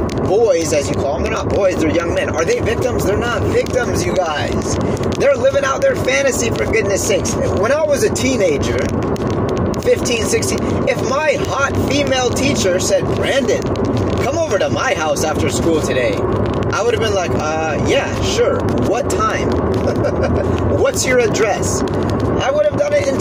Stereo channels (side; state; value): both; identical; correlation 1.00